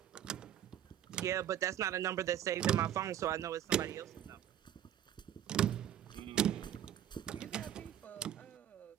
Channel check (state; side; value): quieter; left; 10.7 dB